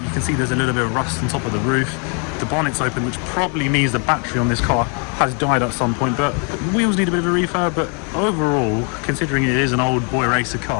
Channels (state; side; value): quieter; right; 37.5 dB